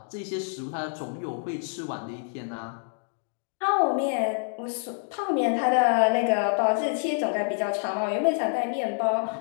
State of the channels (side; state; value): right; silent; 60 dB below the other